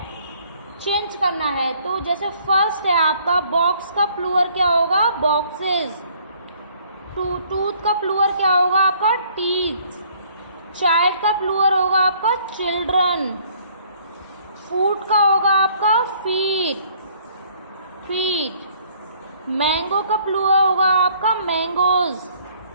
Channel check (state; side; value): inverted; both; correlation -0.61